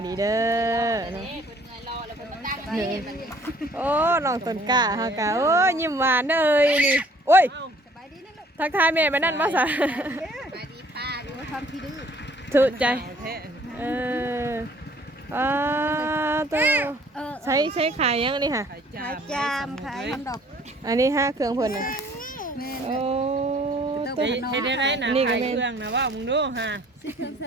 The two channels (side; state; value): both; normal; correlation 0.57